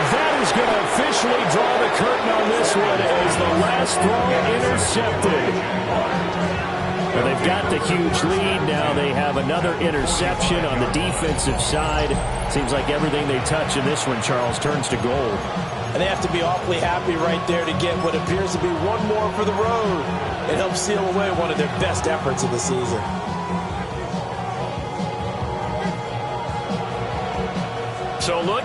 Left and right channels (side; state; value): both; identical; correlation 1.00